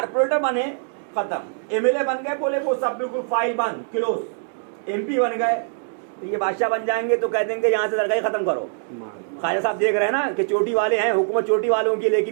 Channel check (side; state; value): left; silent; digital silence